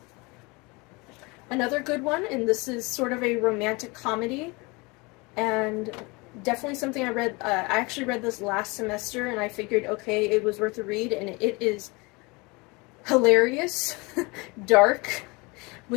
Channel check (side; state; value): right; quieter; 26.4 dB